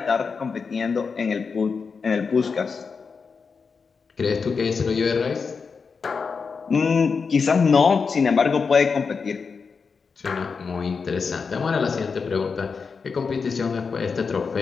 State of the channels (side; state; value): right; quieter; 5.2 dB